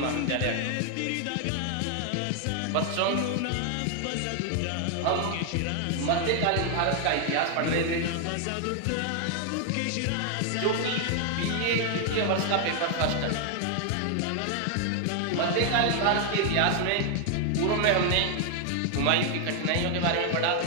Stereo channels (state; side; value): different; both; correlation 0.00